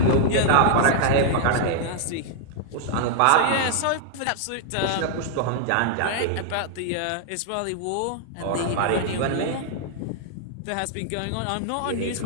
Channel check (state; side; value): different; both; correlation -0.01